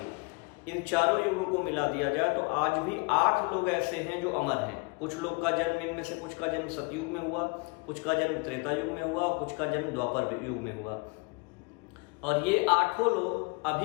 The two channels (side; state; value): right; quieter; 30.4 dB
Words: इन चारों युगों को मिला दिया जाए तो आज भी 8 लोग ऐसे हैं जो अमर हैं। कुछ लोग का जन्म, इनमें से कुछ का जन्म सतयुग में हुआ, कुछ का जन्म त्रेता युग में हुआ, कुछ का जन्म द्वापर युग में हुआ। और ये 8 लोग